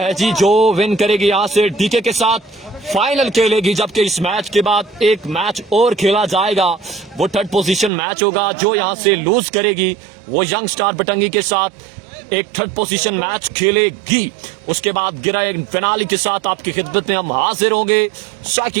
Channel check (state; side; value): drops out; left; at 7.9 s